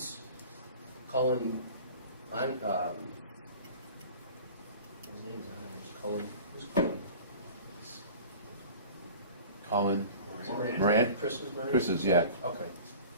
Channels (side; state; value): both; inverted; correlation -0.41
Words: Cullen, his name's on it, Cullen, who's Cullen? Colin, Moran? Chris's Moran? Chris's, yeah. Okay.